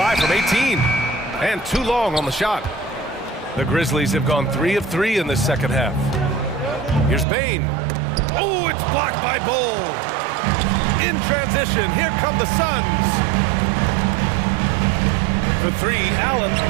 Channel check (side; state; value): left; drops out; at 7.2 s